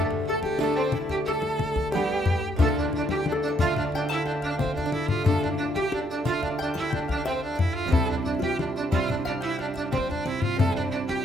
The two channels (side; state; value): both; normal; correlation 0.72